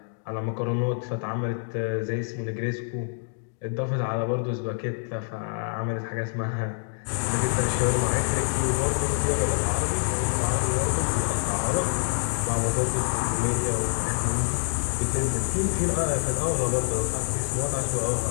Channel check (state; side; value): silent; right; digital silence